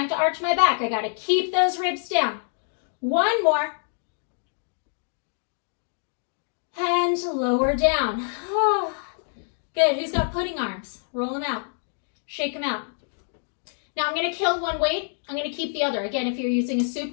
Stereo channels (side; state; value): right; silent; 59 dB below the other